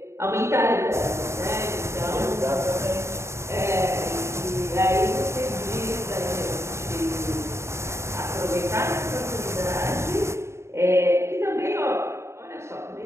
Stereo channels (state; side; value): late; left; 0.13 ms